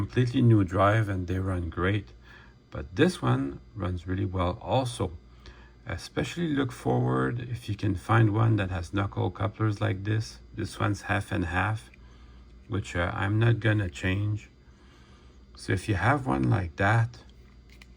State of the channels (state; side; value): identical; both; correlation 1.00